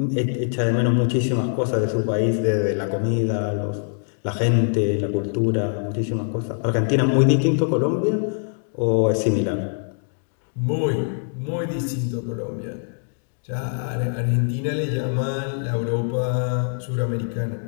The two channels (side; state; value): right; silent; digital silence